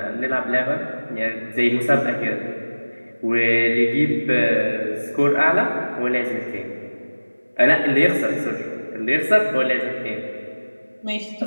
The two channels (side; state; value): both; inverted; correlation -1.00